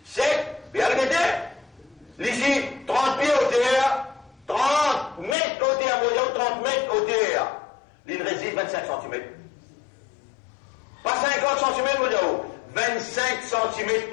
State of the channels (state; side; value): drops out; right; at 5.4 s